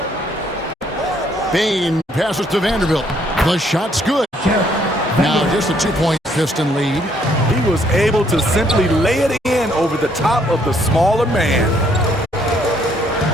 Bain passes to Vanderbilt. The shot's good. Now just a 2-point Piston lead. He was able to simply lay it in over the top of the smaller man.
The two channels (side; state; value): both; normal; correlation 0.67